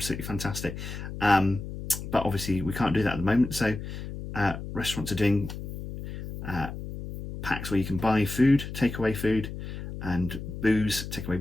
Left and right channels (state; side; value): noise; left; hum, 8 dB below the sound